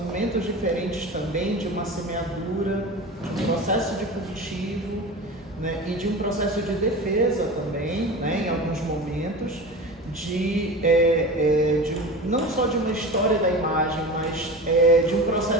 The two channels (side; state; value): both; normal; correlation 0.31